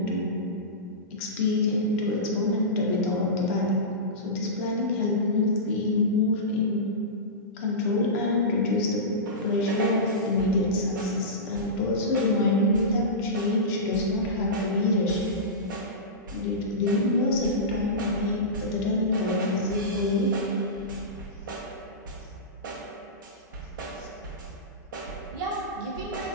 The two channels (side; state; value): both; normal; correlation -0.18